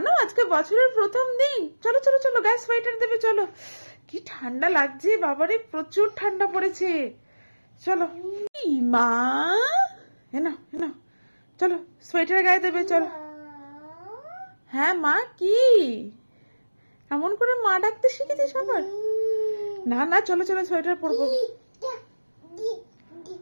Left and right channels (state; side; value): inverted; both; correlation -1.00